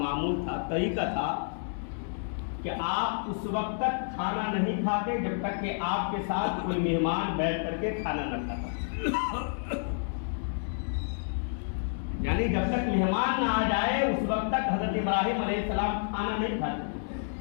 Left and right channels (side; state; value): right; silent; digital silence